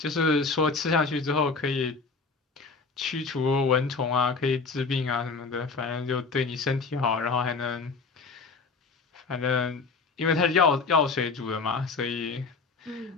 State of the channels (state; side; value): quieter; right; 4.4 dB